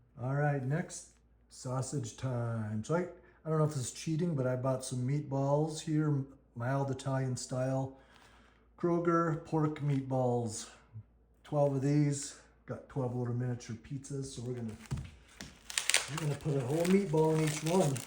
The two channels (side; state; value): both; identical; correlation 1.00